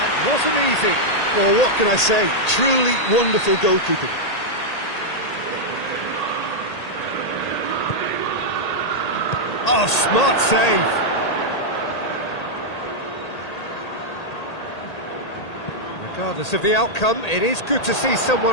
wasn't easy. Well, what can I say? Truly wonderful goalkeeping. Oh, smart save. Regardless of the outcome, it is good to see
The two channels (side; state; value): right; late; 1.8 ms